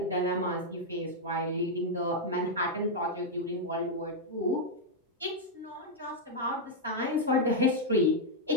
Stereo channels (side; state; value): both; normal; correlation -0.02